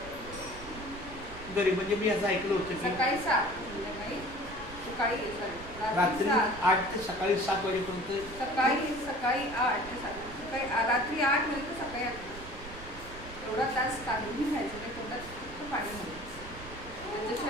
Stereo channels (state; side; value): noise; right; rumble, 14 dB below the sound